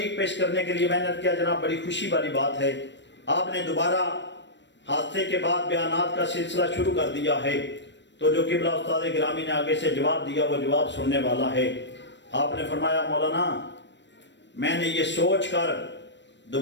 پیش کرنے کے لیے میں نے کیا جناب بڑی خوشی والی بات ہے، آپ نے دوبارہ حادثے کے بعد بیانات کا سلسلہ شروع کر دیا ہے، تو جو قبلہ استاد گرامی نے آگے سے جواب دیا وہ جواب سننے والا ہے۔ آپ نے فرمایا مولانا میں نے یہ سوچ کر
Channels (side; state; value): right; late; 0.53 ms